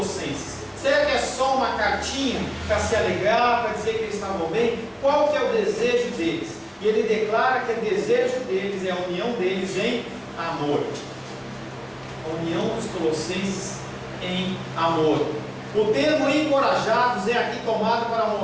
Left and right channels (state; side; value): identical; both; correlation 1.00